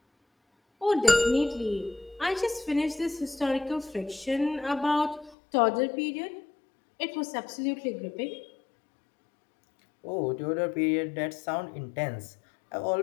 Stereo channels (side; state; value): right; drops out; at 5.4 s